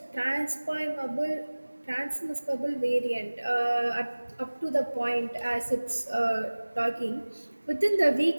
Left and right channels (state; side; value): inverted; both; correlation -1.00